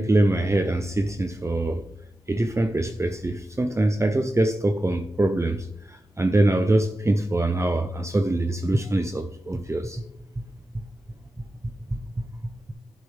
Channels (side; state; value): both; normal; correlation 0.92